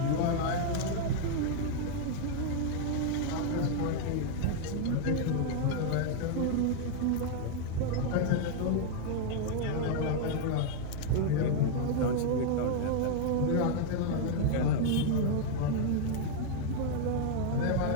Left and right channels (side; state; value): both; different; correlation 0.00